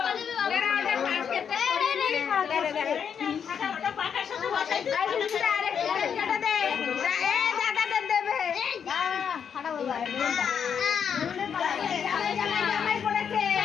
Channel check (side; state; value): right; quieter; 7.4 dB